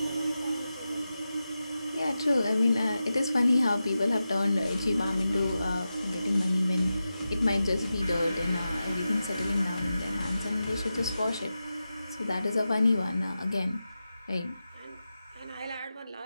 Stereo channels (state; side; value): inverted; both; correlation -0.92